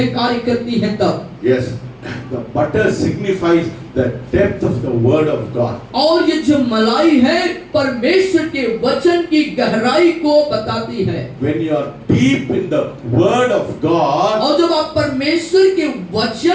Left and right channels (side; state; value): both; identical; correlation 1.00